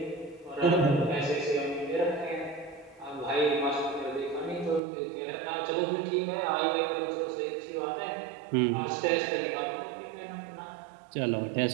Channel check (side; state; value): left; drops out; at 4.8 s